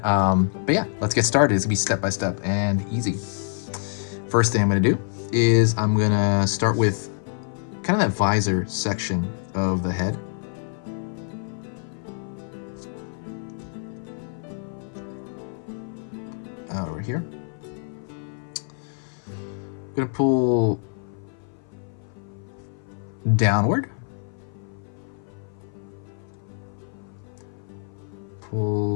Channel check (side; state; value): right; silent; 56 dB below the other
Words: But yeah, let's get started. It's going to be step by step and easy. First thing I'm going to do is I'm going to start with kind of that visor section of the head. Over here. I'm going to pull downward.